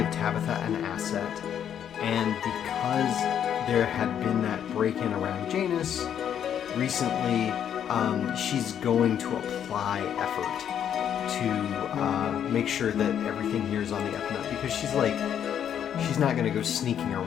Tabitha an asset, and because there had been that break-in around Janus recently, she's going to apply effort to make sure that everything here is on the up and up, because she's not going to go sneaking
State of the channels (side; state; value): right; quieter; 9.2 dB